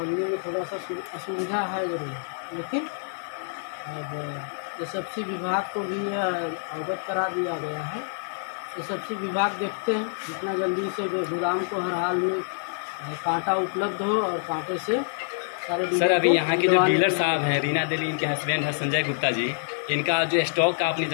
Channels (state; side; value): silent; right; 60 dB below the other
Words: में थोड़ा सा असुविधा है जरूर, लेकिन अब एसएफसी विभाग को भी अवगत करा दिया गया है। एसएफसी विभाग देखते हैं जितना जल्दी से गोदाम को हर हाल में कांटा उपलब्ध हो और कांटे से सारे। सर, अभी यहाँ के जो डीलर साहब हैं, रीना देवी इनके हस्बैंड है संजय गुप्ता जी, इनका जो स्टॉक का आपने